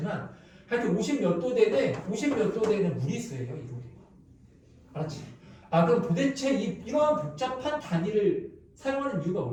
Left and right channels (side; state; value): both; identical; correlation 1.00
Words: 하여튼 50 몇 도 되는 무리수예요. 1호도가. 알았지? 그럼 도대체 이러한 복잡한 단위를 사용하는 이유가